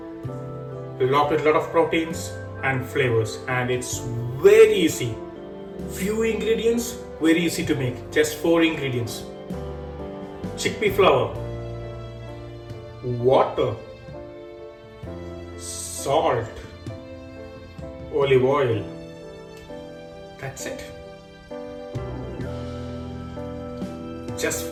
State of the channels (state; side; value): identical; both; correlation 1.00